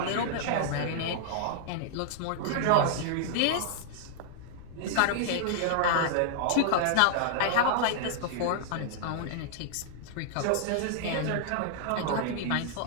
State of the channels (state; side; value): different; both; correlation -0.01